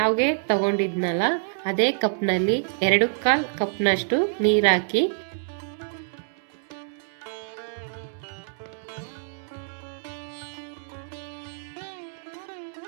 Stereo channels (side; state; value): left; silent; 61 dB below the other